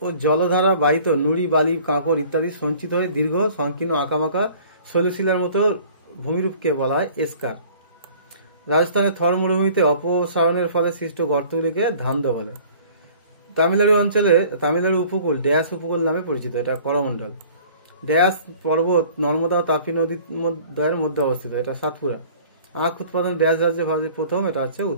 ও জলধারা বাহিত নুড়ি, বালি, কাঁকড় ইত্যাদি সঞ্চিত হয়ে দীর্ঘ সংকীর্ণ আঁকামাকা শৈলশিলার মতো ভূমিরূপকে বলা হয় এসকার। রাজস্থানের থর মরুভূমিতে অপসারণের ফলে সৃষ্ট গর্তগুলিকে ধান্দ বলে। তামিলনাড়ু উপকূল ড্যাশ উপকূল নামে পরিচিত, এটা করমণ্ডল। ড্যাশ পর্বত নর্মদা ও তাপি নদীর দ্বয়ের মধ্যে অবস্থিত, এটা সাতপুরা। আখ উৎপাদন ড্যাশ রাজ্যে ভারতের প্রথম, এটা হচ্ছে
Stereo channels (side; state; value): both; inverted; correlation -0.50